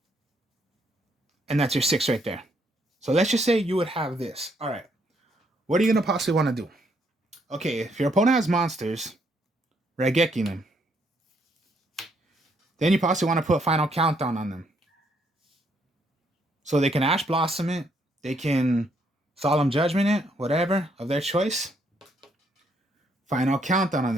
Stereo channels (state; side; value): normal; both; correlation 0.72